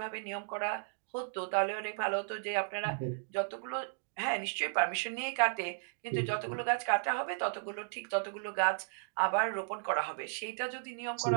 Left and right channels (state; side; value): silent; left; digital silence